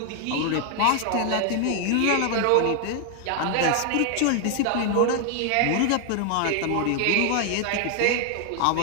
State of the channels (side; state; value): both; different; correlation 0.00